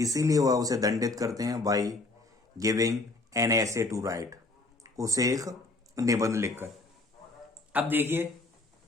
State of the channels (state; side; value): quieter; right; 3.1 dB